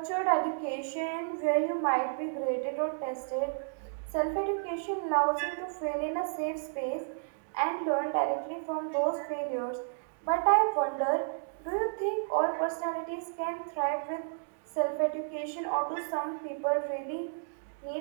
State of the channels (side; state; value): left; silent; digital silence